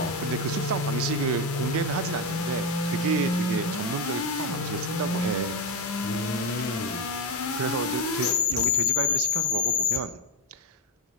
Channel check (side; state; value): both; normal; correlation 0.09